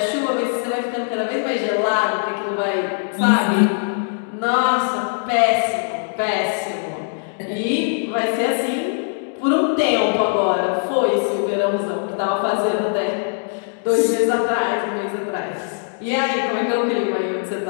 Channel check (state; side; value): silent; right; digital silence